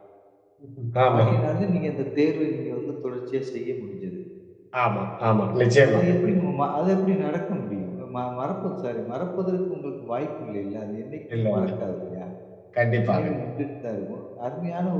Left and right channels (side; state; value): both; identical; correlation 1.00